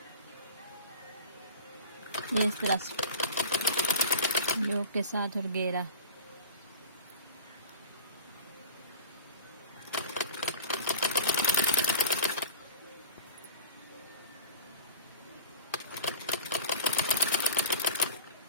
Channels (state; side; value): inverted; both; correlation -0.40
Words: ये इस तरह योक के साथ और घेरा।